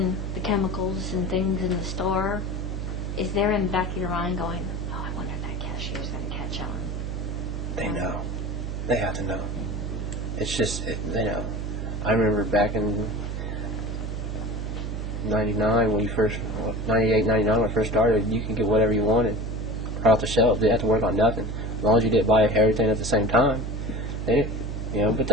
the chemicals and things in the store, is there in the back of your mind going, oh, I wonder if that cashier's going to catch on? They know. They have to know. It's just, they know. I remember back in 99, 98, 99, when I first started, you could get whatever you wanted right off the shelf. They didn't have to work on nothing. As long as you didn't buy everything at the same time. They didn't, but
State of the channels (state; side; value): noise; right; hum, 4 dB below the sound